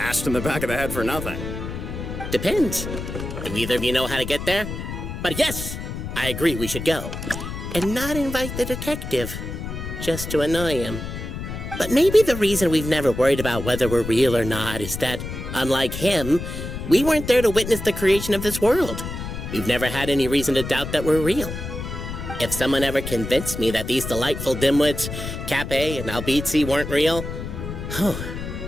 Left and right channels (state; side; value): noise; left; rumble, 7 dB below the sound